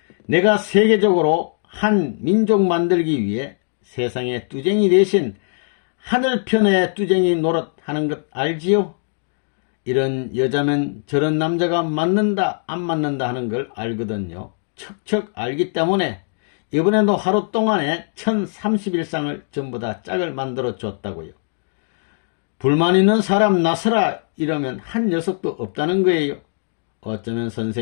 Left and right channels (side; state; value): right; silent; digital silence